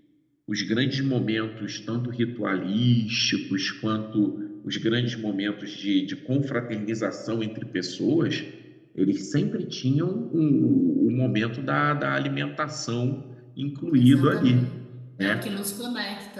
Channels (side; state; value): both; identical; correlation 1.00